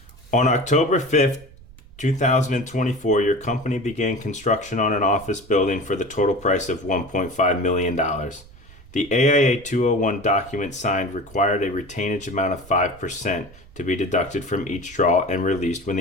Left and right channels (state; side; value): noise; right; rumble, 22 dB below the sound